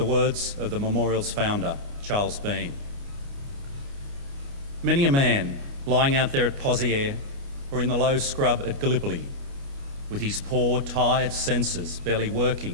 words of the memorial's founder, Charles Bean. Many a man lying out there at Pozières or in the low scrub at Gallipoli, with his poor, tired senses barely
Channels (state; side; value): late; left; 29 ms